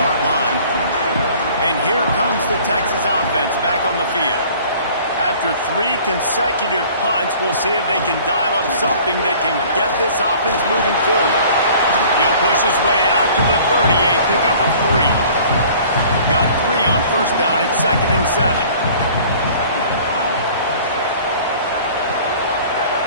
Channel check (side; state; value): both; inverted; correlation -0.50